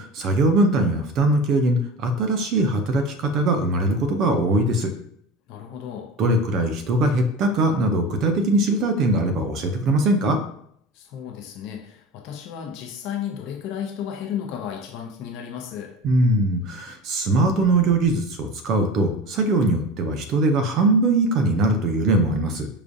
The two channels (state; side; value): normal; both; correlation 0.31